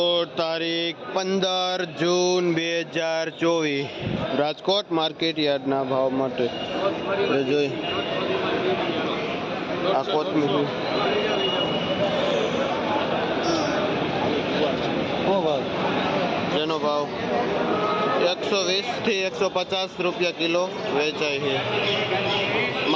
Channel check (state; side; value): identical; both; correlation 1.00